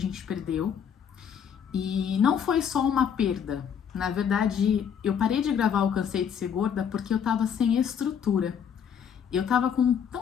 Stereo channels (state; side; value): quieter; right; 7.9 dB